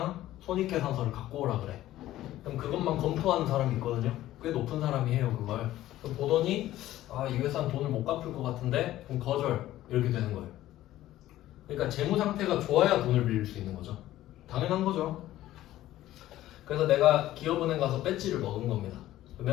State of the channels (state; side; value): quieter; right; 14.4 dB